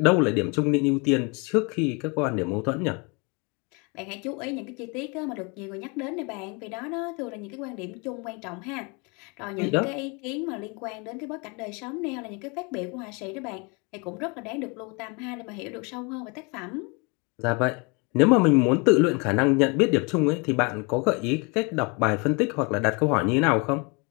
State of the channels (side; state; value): right; quieter; 30.7 dB